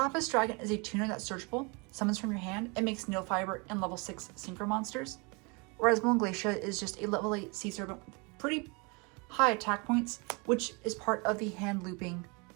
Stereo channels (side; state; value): left; quieter; 30.3 dB